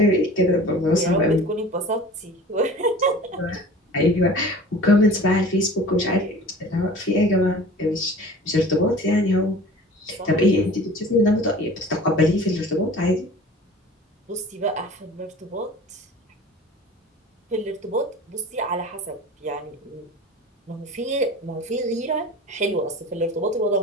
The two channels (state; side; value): normal; both; correlation 0.41